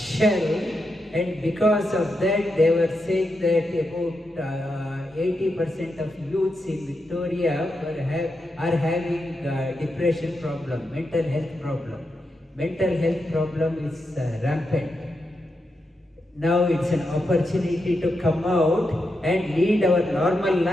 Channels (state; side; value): normal; both; correlation 0.86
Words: and because of that, they were saying that about 80% of youths in Victoria are having depression problem, mental health problem. Mental health problem is rampant. Now it's an opportunity to come out and lead our normal